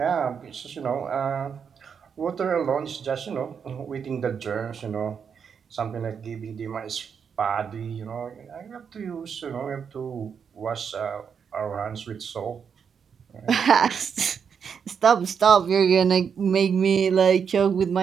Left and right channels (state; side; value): quieter; left; 6.9 dB